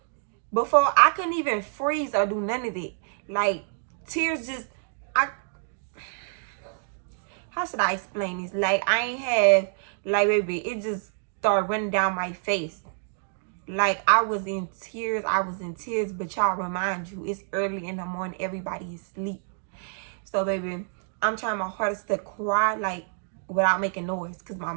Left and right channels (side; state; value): left; silent; digital silence